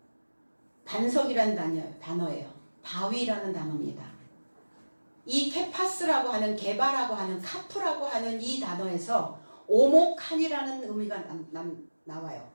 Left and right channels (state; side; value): inverted; both; correlation -1.00